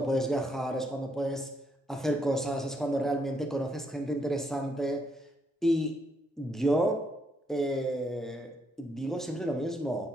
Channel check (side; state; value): both; normal; correlation 0.75